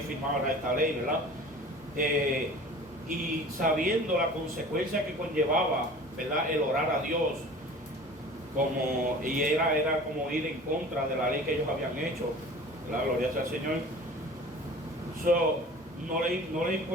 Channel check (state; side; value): normal; both; correlation 0.42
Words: firmara esta ley, ¿verdad? Y sabiendo la consecuencia que conllevaba, ¿verdad? El orar a Dios, y era como ir en contra de la ley que ellos habían hecho, ¿verdad? Gloria sea al Señor. No le